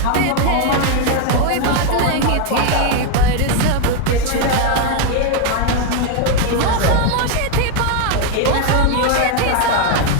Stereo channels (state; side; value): different; both; correlation 0.01